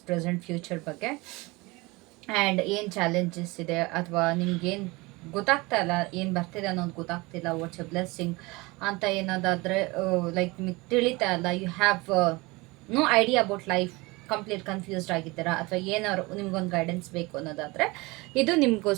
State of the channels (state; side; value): quieter; left; 23.7 dB